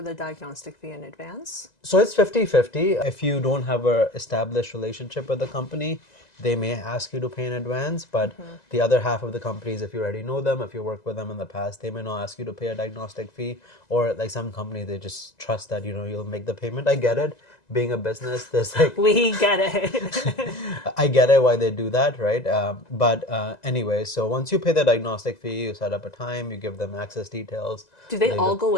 the diagnostic fee in advance? So it's 50-50. If you don't have a established relationship with the company, they may ask you to pay in advance. But the other half of the companies, if you already know them, if you worked with them in the past, they may not ask you to pay a diagnostic fee. Or like some companies, they just trust that you'll make the payment. I get it. Being a business, there's like We get it. I get it why they do that, right? But anyway, so once you pay the diagnostic fee, you set up a time, you give them access details. Do they all go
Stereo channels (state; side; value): late; right; 2.0 ms